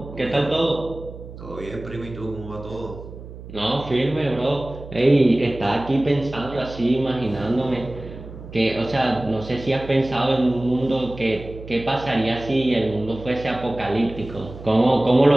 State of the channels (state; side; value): noise; right; hum, 14 dB below the sound